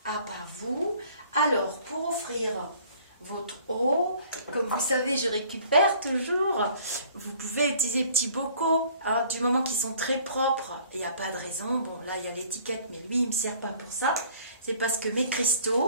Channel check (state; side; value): inverted; both; correlation -0.54